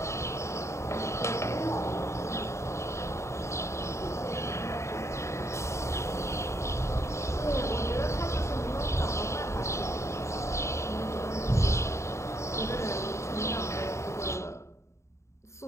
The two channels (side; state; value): right; late; 0.14 ms